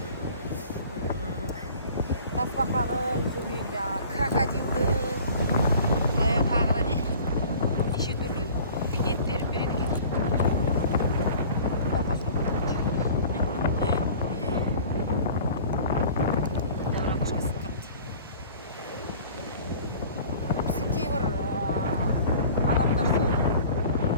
крокодилдің, тағы не? Неше түрлі ет беріп береді екен. Біздің кейбір адамдар сол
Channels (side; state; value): both; inverted; correlation -0.45